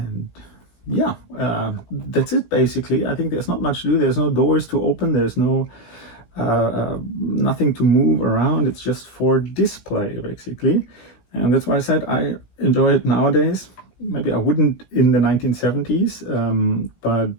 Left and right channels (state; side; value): late; right; 17 ms